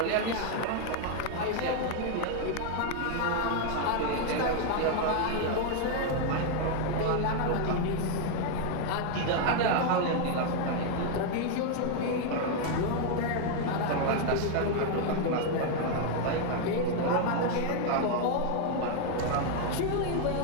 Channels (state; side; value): different; both; correlation 0.00